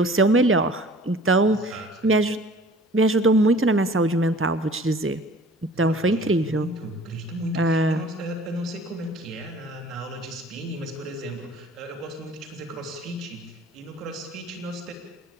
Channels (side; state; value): both; normal; correlation 0.48